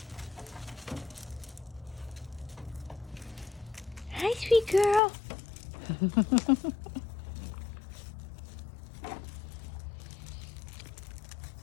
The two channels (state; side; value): drops out; right; at 5.0 s